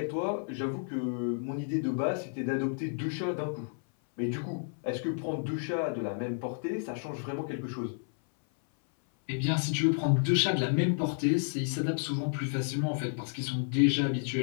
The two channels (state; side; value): silent; right; 57 dB below the other